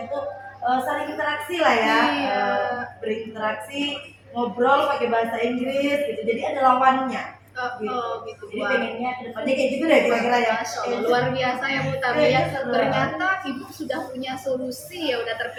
itu saling interaksi lah ya, berinteraksi, ngobrol pakai bahasa Inggris gitu, jadi ada lawannya. Gitu. Jadi Wah. pengennya kedepannya kayak gitu deh kira-kira ya. Masya Allah, luar biasa ya Bu Tami ya. Iya, seru. Ternyata Ibu sudah punya solusi ya, udah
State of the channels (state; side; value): identical; both; correlation 1.00